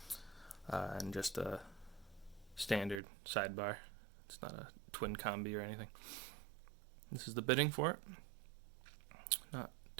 and just a standard sidebar. It's not a twin combi or anything. This is the bitting for it. Not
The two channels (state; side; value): drops out; left; at 3.0 s